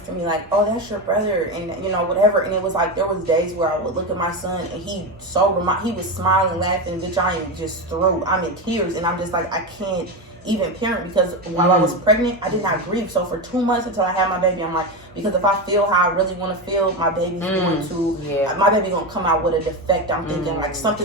to me like, oh, that's your brother. And, you know, whatever. And it was like, there was days where I would look at my son and he was smiling, laughing. Bitch, I am just through. I'm in tears. And I'm just like, I can't even parent because while I was pregnant, I did not grieve. So for 2 months until I had my baby, I'm like, because if I feel how I really want to feel, my baby's going to, my baby going to come out with a defect. I'm thinking like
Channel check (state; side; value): normal; both; correlation 0.16